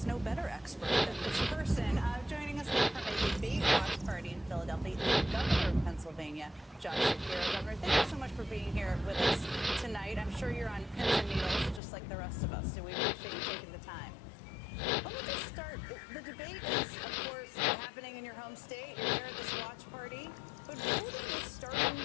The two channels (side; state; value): right; drops out; at 11.8 s